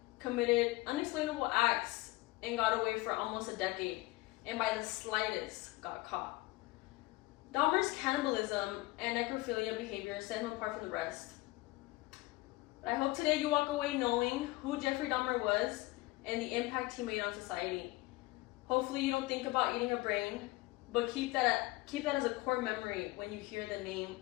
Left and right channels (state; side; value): quieter; right; 20.8 dB